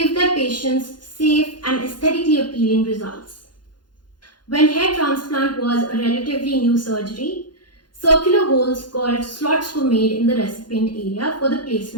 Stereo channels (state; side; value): late; right; 0.71 ms